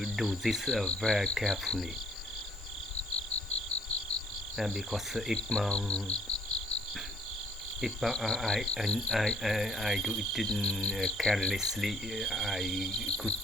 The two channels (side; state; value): both; normal; correlation 0.61